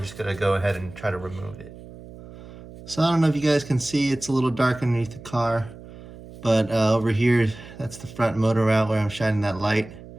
going to go ahead and try to remove it. So I don't know if you guys can see, it's a little dark underneath the car, but over here, that's the front motor mount where I'm shining that light,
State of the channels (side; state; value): right; noise; hum, 17 dB below the sound